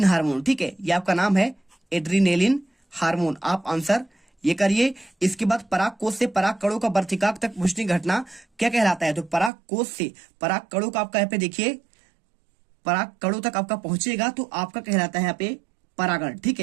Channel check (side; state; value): left; drops out; at 9.5 s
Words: हार्मोन, ठीक है। ये आपका नाम है एड्रीनेलिन हार्मोन। आप आंसर ये करिए। इसके बाद पराग कोष से पराग कणों का वर्तिकाक तक पहुंचने की घटना क्या कहलाता है, तो पराग कोष से पराग कणों का आपका यहाँ पे देखिए पराग कणों तक आपका पहुंचेगा तो आपका कहलाता है यहाँ पे परागण, ठीक